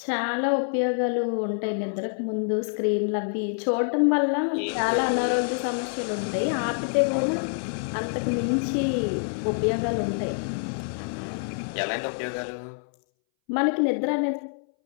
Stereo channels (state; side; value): silent; right; 61 dB below the other